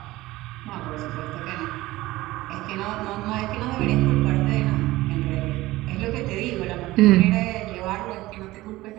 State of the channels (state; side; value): quieter; left; 18.1 dB